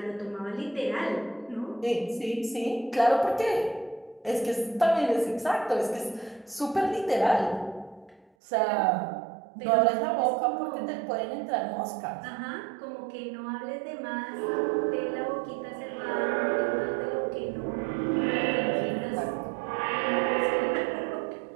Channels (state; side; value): drops out; left; at 8.2 s